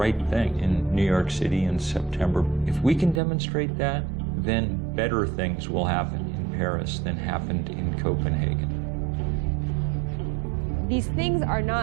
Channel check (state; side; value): drops out; left; at 3.2 s